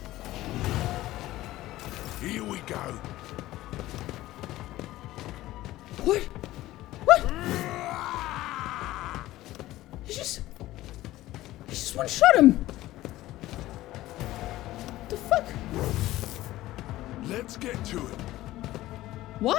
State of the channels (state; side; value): quieter; right; 16.1 dB